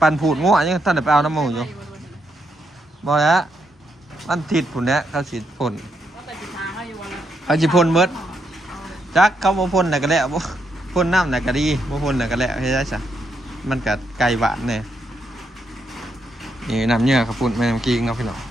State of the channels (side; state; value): both; normal; correlation 0.79